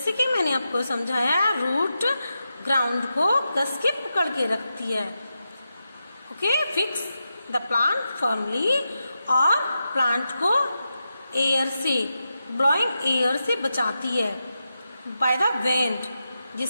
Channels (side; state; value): both; inverted; correlation -0.89